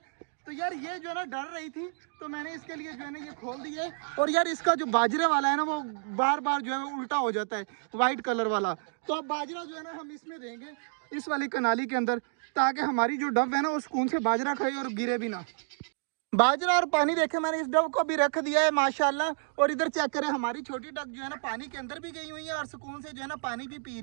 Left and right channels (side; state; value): left; silent; digital silence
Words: तो यार ये जो है ना डर रही थी, तो मैंने इसके लिए जो है ना ये खोल दी है। और यार इसका जो बाजरे वाला है ना वो बार बार जो है उल्टा हो जाता है, वाइट कलर वाला। तो अब बाजरा जो है ना हम इसमें देंगे, इस वाली कनाली के अंदर, ताकि हमारी जो डब है ना वो सुकून से बाजरा खाए और गिरे भी ना। बाजरा और पानी देखे मैंने इस डब को भी रख दिया है माशाल्लाह। और इधर चेक करें, हमारी छोटी डक जो है ना पानी के अंदर भी गई हुई है और सुकून से जो है ना पानी भी पी